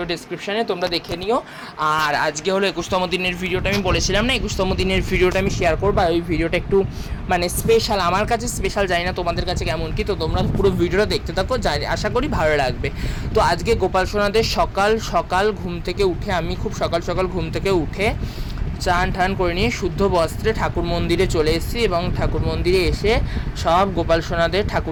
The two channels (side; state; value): both; identical; correlation 1.00